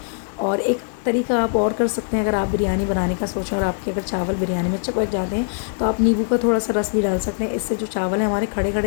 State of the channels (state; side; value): silent; right; 61 dB below the other